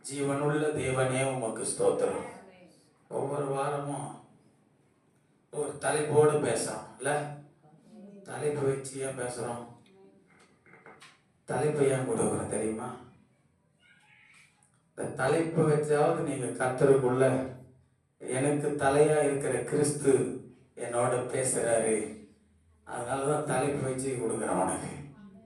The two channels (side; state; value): both; identical; correlation 1.00